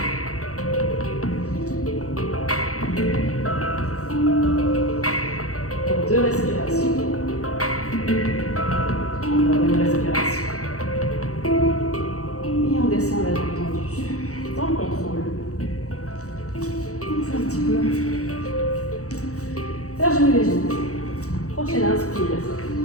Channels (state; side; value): late; right; 0.65 ms